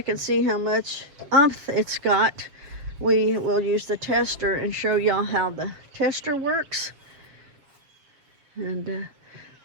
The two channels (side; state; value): left; late; 7.0 ms